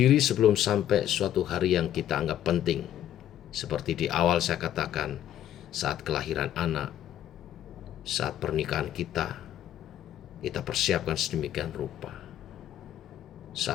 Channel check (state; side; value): quieter; right; 11.2 dB